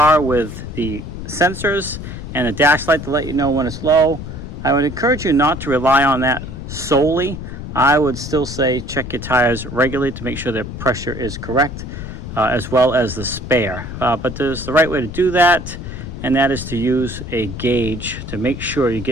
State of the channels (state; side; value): noise; left; rumble, 9 dB below the sound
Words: with the sensors and a dash light to let you know when it's low, I would encourage you not to rely on that solely. I would still say check your tires regularly to make sure their pressure is correct, as well as the spare. But there's the right way to do that, and that is to use a gauge to make sure you're